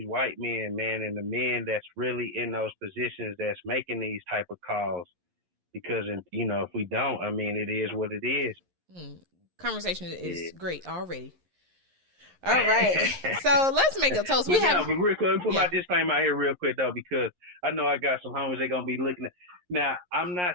white men, man, and the men that's really in those positions that's making these type of calls. Because, if we don't, I mean, it is what it is. Conversation is great already. All right. So let's make a toast. But real quick, let me put my disclaimer out here real quick, though, because I know I got some homies they're going to be looking at. Now, I'm not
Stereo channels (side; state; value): left; late; 11 ms